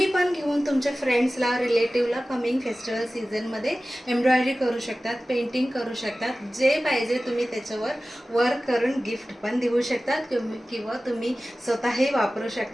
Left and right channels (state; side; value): normal; both; correlation 0.96